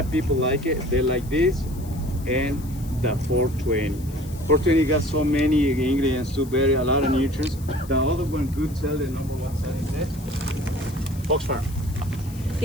people like it. They like this and the 420. 420 got so many ingredients to bury a lot of nutrients. The other one, good cell, the number one cell is that Fox Farm.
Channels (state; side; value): noise; left; hiss, 20 dB below the sound